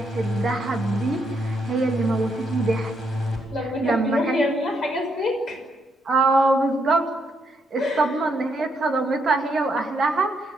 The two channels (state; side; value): normal; both; correlation 0.76